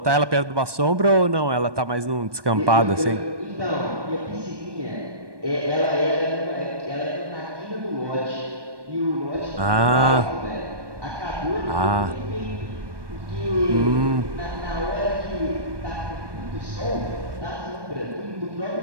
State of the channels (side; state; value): left; late; 1.2 ms